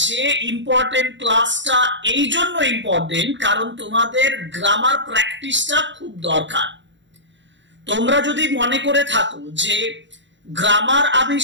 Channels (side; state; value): left; late; 0.53 ms